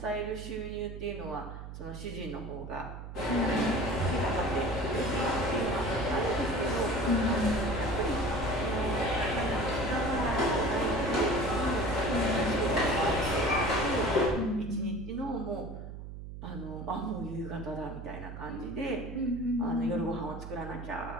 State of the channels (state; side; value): noise; right; hum, 10 dB below the sound